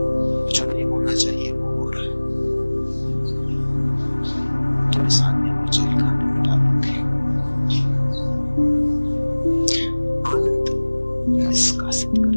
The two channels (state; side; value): inverted; both; correlation -1.00